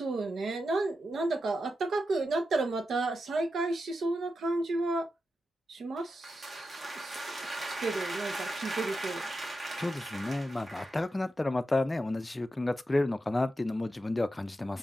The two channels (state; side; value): normal; both; correlation 0.89